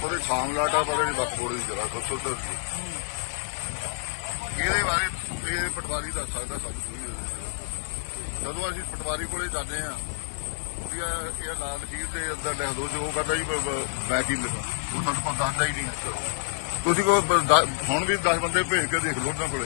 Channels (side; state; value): right; silent; 59 dB below the other